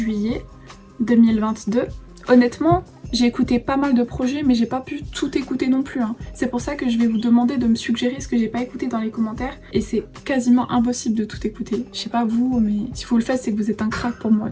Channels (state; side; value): identical; both; correlation 1.00